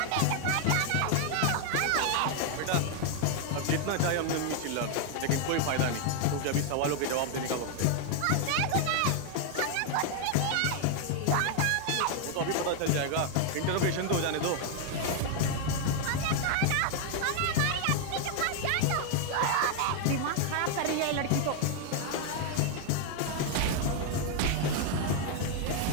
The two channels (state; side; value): different; both; correlation 0.00